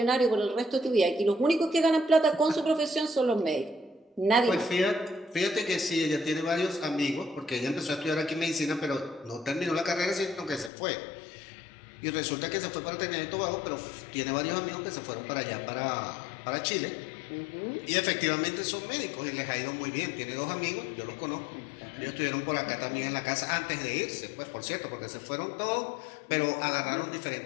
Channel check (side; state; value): right; drops out; at 10.7 s